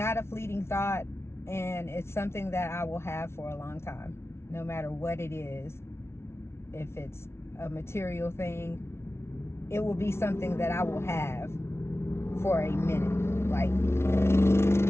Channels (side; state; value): right; late; 0.12 ms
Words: a fleeting thought, and it's something that I will have for a long time, no matter what it is. If it's a material thing, it will be something that I will have for a minute. Like,